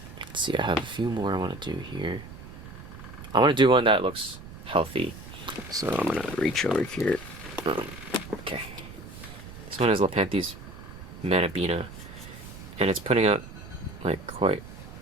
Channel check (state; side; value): noise; right; rumble, 14 dB below the sound